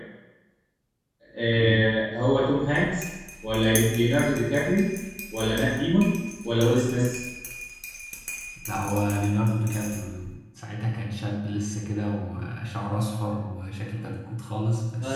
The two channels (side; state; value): both; identical; correlation 1.00